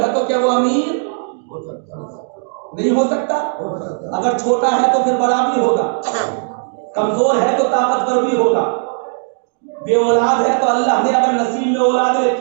تو کیا وہ امیر نہیں ہو سکتا؟ اگر چھوٹا ہے تو پھر بڑا بھی ہوگا، کمزور ہے تو طاقتور بھی ہوگا، بے اولاد ہے تو اللہ نے اگر نصیب میں اولاد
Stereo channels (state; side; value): silent; left; 68 dB below the other